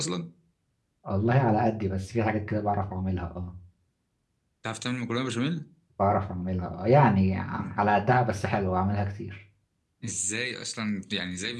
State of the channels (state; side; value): identical; both; correlation 1.00